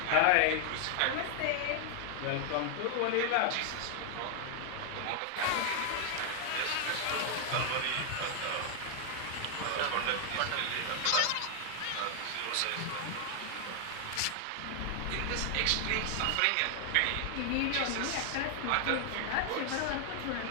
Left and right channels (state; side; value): different; both; correlation 0.00